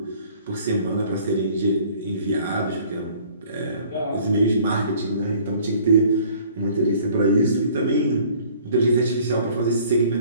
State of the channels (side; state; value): both; inverted; correlation -0.54